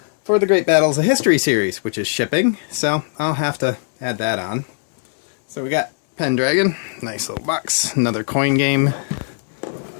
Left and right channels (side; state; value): right; silent; digital silence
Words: for the Great Battles of History series, which is shipping, so I'll have to add that on. So we got Pendragon, nice little box, another coin game.